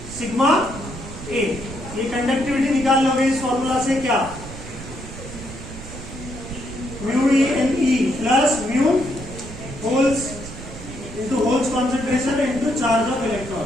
सिग्मा A. ये कंडक्टिविटी निकाल लोगे इस फॉर्मूला से. क्या? Mu E N E plus mu holes into holes concentration into charge of electron.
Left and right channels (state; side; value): noise; right; rumble, 12 dB below the sound